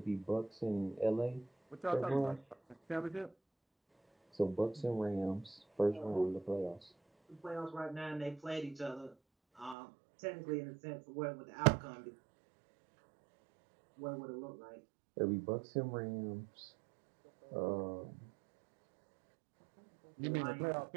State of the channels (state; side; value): drops out; left; at 9.8 s